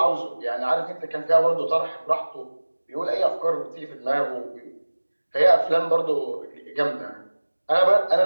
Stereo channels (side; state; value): both; inverted; correlation -1.00